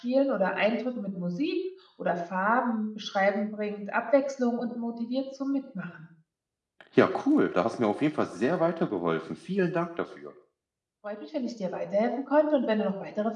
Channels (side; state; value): both; identical; correlation 1.00